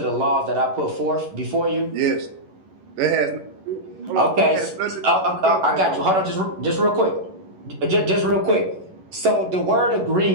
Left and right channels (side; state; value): left; late; 11 ms